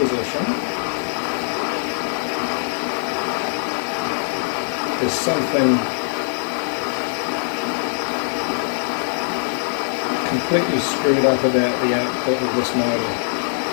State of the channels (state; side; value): silent; right; digital silence